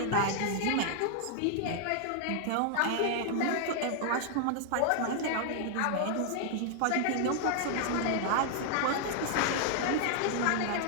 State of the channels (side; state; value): both; different; correlation 0.00